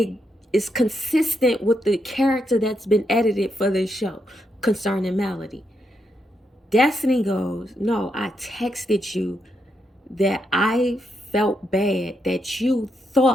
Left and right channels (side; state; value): both; normal; correlation 0.81